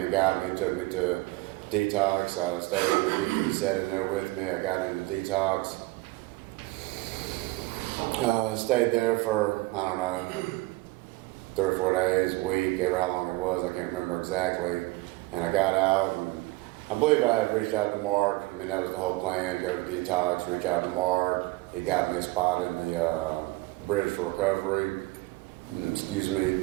got me, took me to Detox. I stayed in the DT setting there with me. I got into Detox. Stayed there for, I don't know, 3 or 4 days, a week, ever how long it was, I can't remember exactly. And I got out, and I believe I had reached out to Mark. I mean, that was the whole plan, go to Detox, reach out to Mark. He got me a spot in the Bridge for Recovery, excuse me.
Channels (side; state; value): left; quieter; 20.5 dB